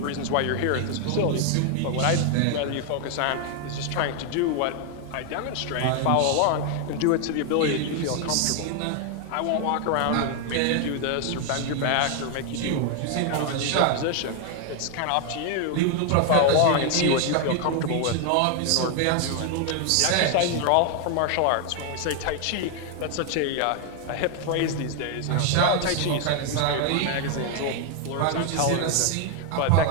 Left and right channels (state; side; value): different; both; correlation 0.00